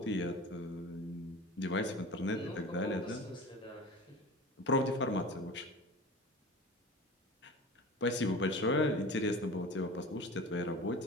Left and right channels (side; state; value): both; normal; correlation 0.36